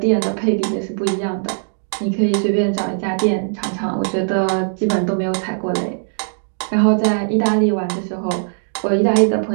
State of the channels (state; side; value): silent; left; digital silence